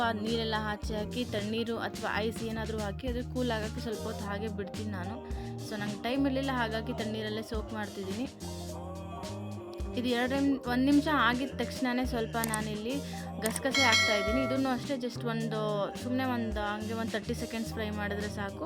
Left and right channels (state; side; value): identical; both; correlation 1.00